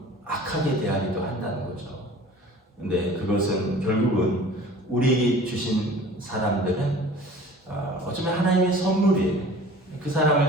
악하게 대하기도 한다는 거죠. 근데 그것은 결국은 우리에게 주신 사람들은 어쩌면 하나님의 선물이에요. 그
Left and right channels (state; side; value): normal; both; correlation 0.45